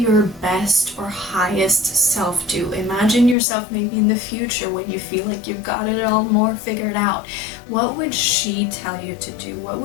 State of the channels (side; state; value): right; drops out; at 3.4 s